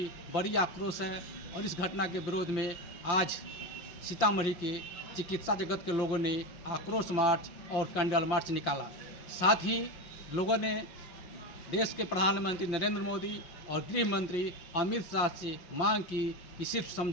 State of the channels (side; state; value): right; late; 5.9 ms